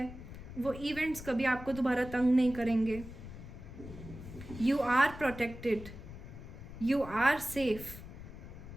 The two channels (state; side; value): noise; left; rumble, 13 dB below the sound